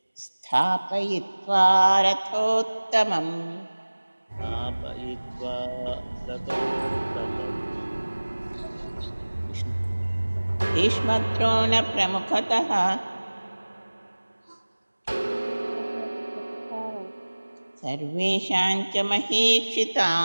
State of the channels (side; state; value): both; inverted; correlation -1.00